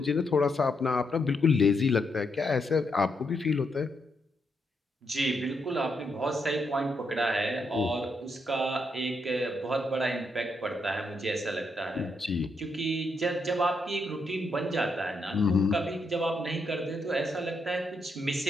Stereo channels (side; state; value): both; normal; correlation 0.80